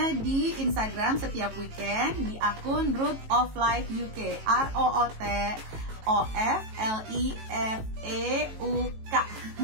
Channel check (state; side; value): late; left; 18 ms